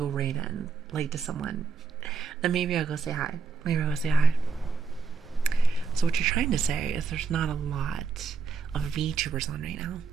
raid in, late to someone, then maybe I'll go say hi. Maybe I'll go say hi. So what you're trying to say is there's not a lot of VTubers on right now.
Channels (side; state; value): left; quieter; 4.7 dB